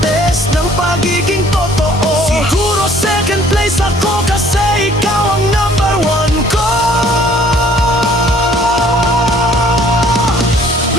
ng pagiging totoo, siguro second place ako, kasi ikaw ang number one ko.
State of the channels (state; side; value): normal; both; correlation 0.58